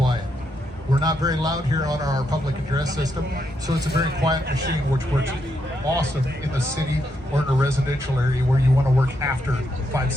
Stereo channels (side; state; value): both; normal; correlation 0.80